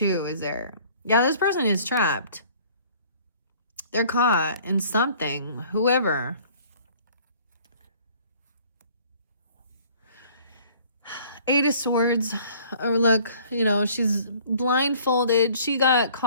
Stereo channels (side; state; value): both; inverted; correlation -0.54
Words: is there. Yeah, this person is trapped. They're caught in something. Whoever. Eight of Swords. Or look, you know, she's blindfolded. She got